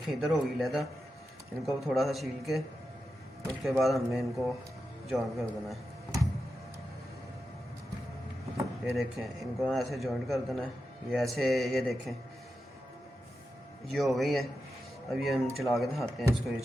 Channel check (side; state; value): both; normal; correlation 0.90